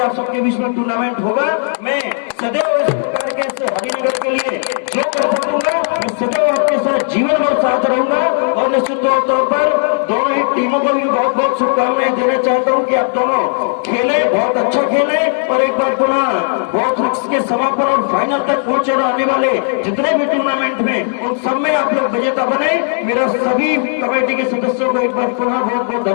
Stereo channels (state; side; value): silent; right; digital silence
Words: सबके बीच में टूर्नामेंट होगा। मैं सदैव इस प्रकार के हरिनगर के लिए जो कर सकूंगा मैं सदैव आपके साथ जीवन भर साथ रहूंगा और निश्चित तौर पर दोनों ही टीमों को भी बहुत बहुत शुभकामनाएं देना चाहता हूं कि आप दोनों खेले, बहुत अच्छा खेले और एक बार पुनः बहुत के समापन और फाइनल तक पहुंचे आने वाले जितने भी टूर्नामेंट में उन सब में आप लोग विजेता बने। मेरा सभी कमेटी के सदस्यों को एक बार पुनः बहुत बहुत